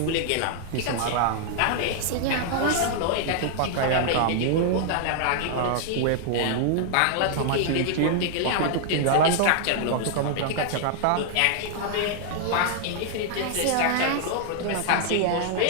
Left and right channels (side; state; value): both; different; correlation 0.00